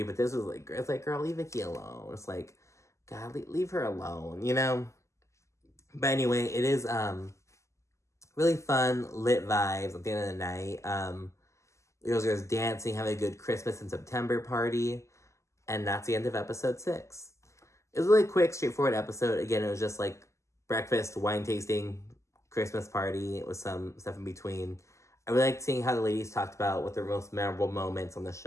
But this was like, it's like, girl, leave Vicki alone. It's like, God, leave her alone, you know? But anyway, it is really fun, lit vibes at the end of the night. The girls are dancing, having a good Christmas in September party. And that's the end of episode 6. It was a really quick, straightforward episode. Again, it was just like breakfast, wine tasting, Christmas party with some stuff in between. I really liked seeing how the ladies talked about what their most memorable moments on the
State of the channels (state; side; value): late; right; 0.14 ms